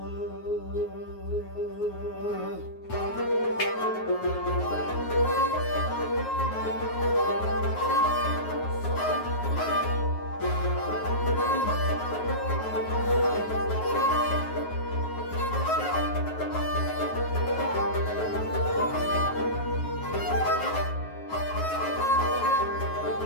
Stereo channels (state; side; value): late; right; 9.4 ms